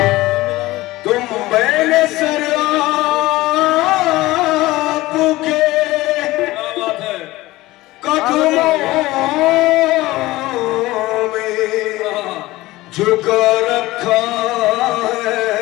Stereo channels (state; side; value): quieter; right; 18.6 dB